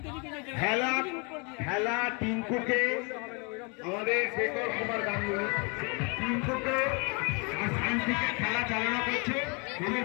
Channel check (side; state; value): right; quieter; 32.9 dB